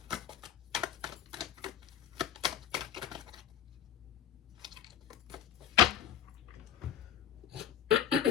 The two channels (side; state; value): right; quieter; 9.5 dB